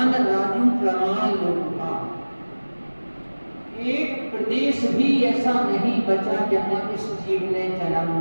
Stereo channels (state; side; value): inverted; both; correlation -1.00